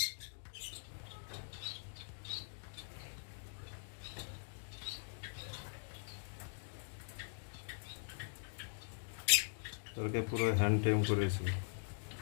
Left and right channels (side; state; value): right; silent; digital silence